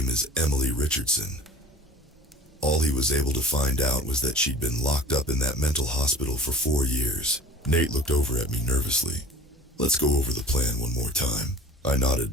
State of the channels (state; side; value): normal; both; correlation 0.42